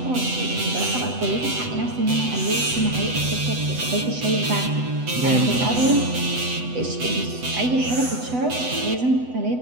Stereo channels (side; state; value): left; late; 8.0 ms